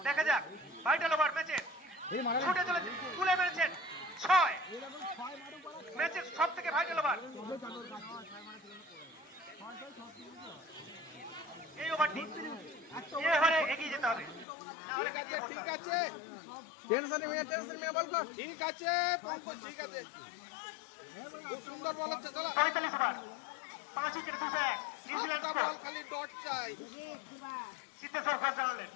দেখা যাক ভাইটাল ওভার ম্যাচে ছুটে চলেছে, তুলে মেরেছেন 6, ম্যাচের সব থেকে ভাইটাল ওভার। এই ওভারটি এই ওভারে এগিয়ে যেতে হবে, না হলে পিছিয়ে পড়তে হবে। টেনশন নিয়ে বল কর ঠিক আছে পঙ্কজ ঠিক আছে খুব সুন্দর বল হচ্ছে চলো 45 ওভার 5 উইকেটে 201 নিউজিল্যান্ড স্কোর। খালি ডট চাই সিদ্ধেশ্বর ঘোষ জানালেন।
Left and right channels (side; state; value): right; drops out; at 14.5 s